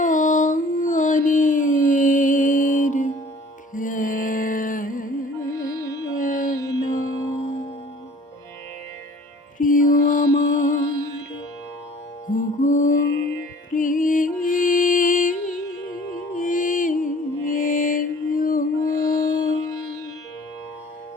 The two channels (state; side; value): normal; both; correlation 0.50